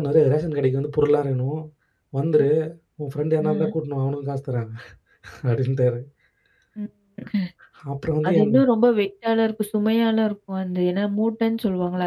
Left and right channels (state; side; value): identical; both; correlation 1.00